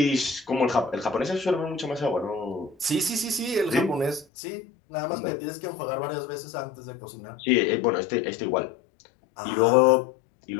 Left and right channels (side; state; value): right; drops out; at 4.2 s